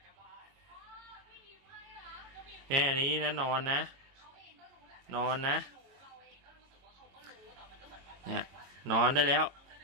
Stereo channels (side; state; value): left; late; 22 ms